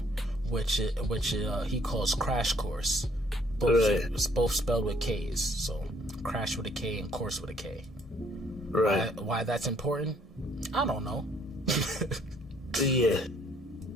which he calls Crash Course. Both spelled with K's. So Crash with a K and Course with a K. Right. Why that's important? I don't know. Yeah.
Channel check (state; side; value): normal; both; correlation 0.65